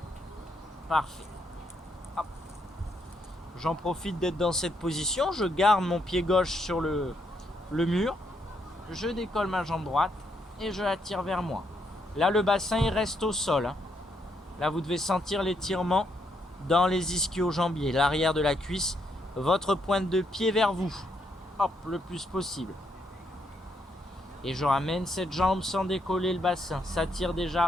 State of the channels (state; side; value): normal; both; correlation 0.76